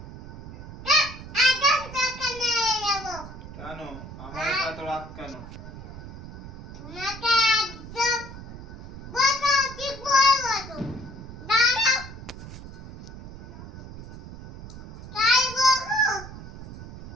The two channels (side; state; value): right; noise; rumble, 13 dB below the sound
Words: কেন আমার এত রাগ কেন? তোমাকে একদম বসো ঠিক বসো দাঁড়াও তাই বসো